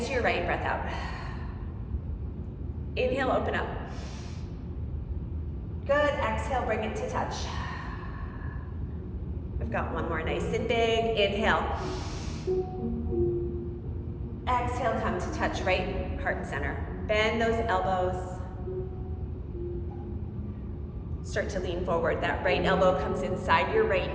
to your right, breath out. Inhale, open up. Good, exhale, bring it to touch. We've got one more, nice and big. Inhale. Exhale. exhale, come to touch right heart center. Bend those elbows. Start to lean forward. That right elbow comes inside your right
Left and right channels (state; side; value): identical; both; correlation 1.00